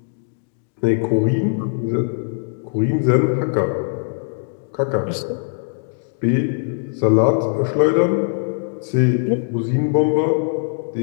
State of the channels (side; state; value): right; silent; digital silence